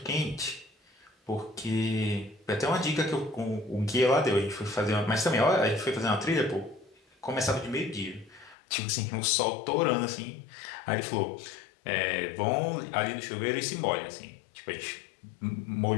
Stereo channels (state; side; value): drops out; right; at 8.6 s